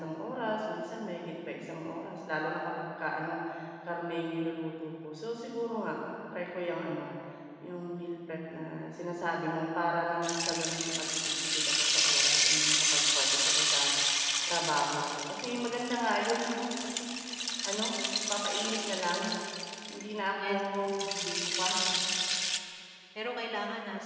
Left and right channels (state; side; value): identical; both; correlation 1.00